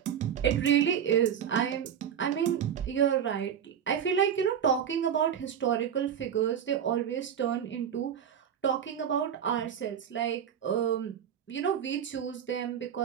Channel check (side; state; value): left; quieter; 8.7 dB